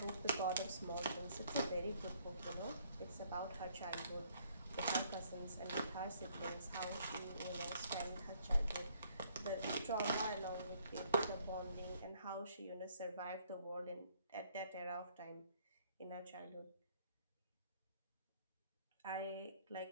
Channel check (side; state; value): both; inverted; correlation -0.64